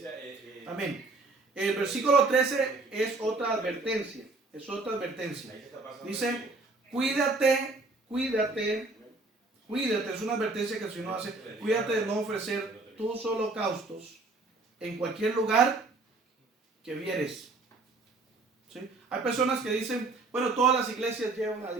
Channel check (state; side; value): quieter; left; 3.4 dB